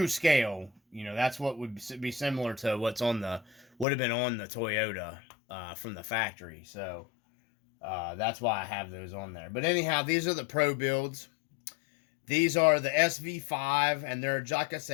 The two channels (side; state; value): right; drops out; at 3.9 s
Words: scale. That's what would be similar to would have been on the Toyota from the factory. So that's why I have those on there. But anyhow, these are the pro builds. These are the SV5, and they're, like I